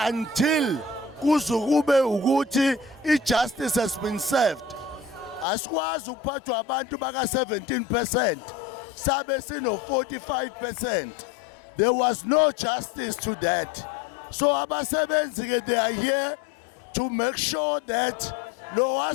until kuzukube ukuthi ijustice has been served. Asikwazi ukuphathwa abantu baka 17% sabe sino 45%. There was no justice to that. So abasebenzi ke they are here to make sure that lowa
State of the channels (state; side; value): drops out; right; at 5.5 s